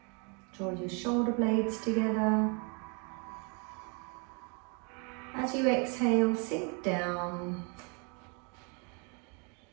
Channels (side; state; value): left; quieter; 34.6 dB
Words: Draw your shoulder blades together. As you exhale, sink down.